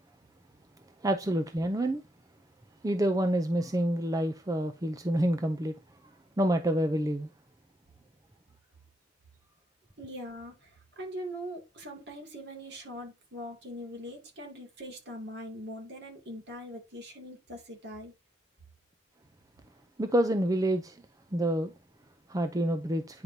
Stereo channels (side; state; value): both; normal; correlation 0.78